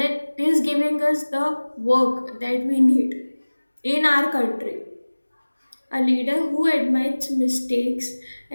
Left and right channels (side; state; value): both; inverted; correlation -1.00